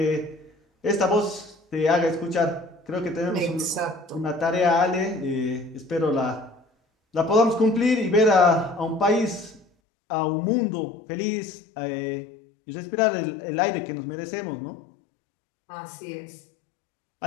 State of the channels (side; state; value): right; drops out; at 9.7 s